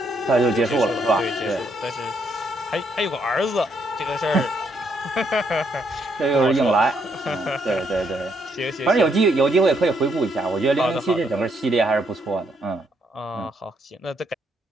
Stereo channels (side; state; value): both; normal; correlation 0.73